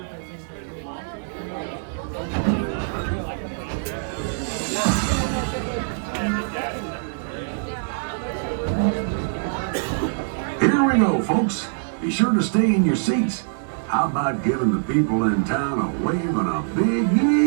Here we go, folks. Be sure to stay in your seats. How about giving the people in town a wave and a big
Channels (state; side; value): silent; left; digital silence